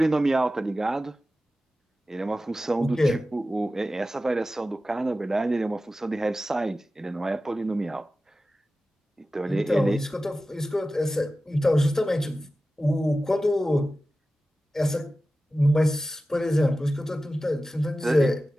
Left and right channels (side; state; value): both; normal; correlation 0.95